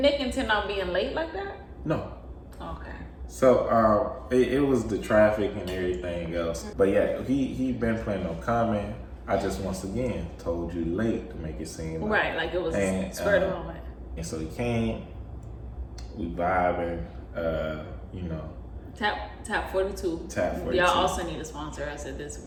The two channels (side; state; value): both; identical; correlation 1.00